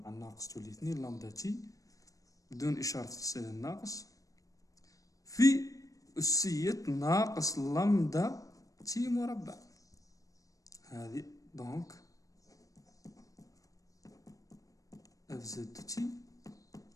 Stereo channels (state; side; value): late; right; 0.16 ms